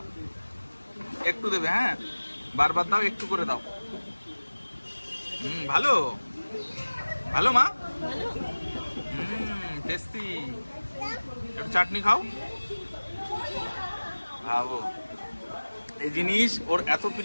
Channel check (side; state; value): both; inverted; correlation -1.00